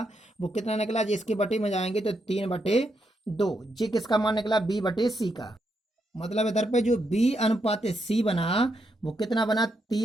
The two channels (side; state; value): both; normal; correlation 0.80